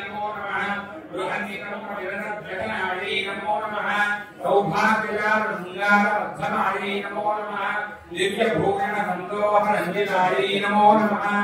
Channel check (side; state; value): both; identical; correlation 1.00